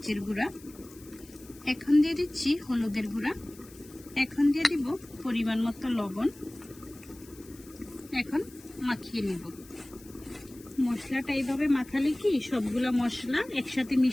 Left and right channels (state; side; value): noise; left; hiss, 22 dB below the sound